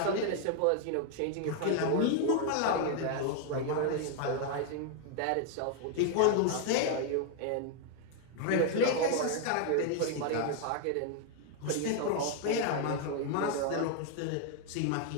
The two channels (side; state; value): both; different; correlation 0.00